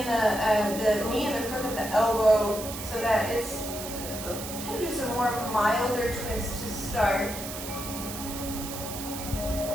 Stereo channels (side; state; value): right; noise; hiss, 9 dB below the sound